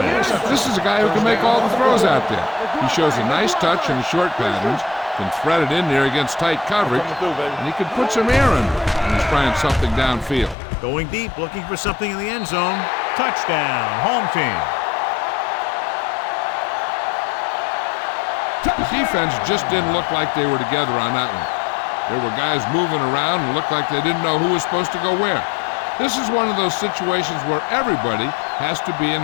This is a guy who can make all the throws out there. He shows a nice touch in the short patterns, can thread it in there against tight coverage, and he can put some air in when he's trying something downfield. Going deep, looking for something in the end zone. Touchdown, home team. The defense just didn't look like they were together on that one. There were guys moving around and looked like they didn't know who was supposed to go where. This is one of those situations where everybody has to be in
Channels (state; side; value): drops out; right; at 10.6 s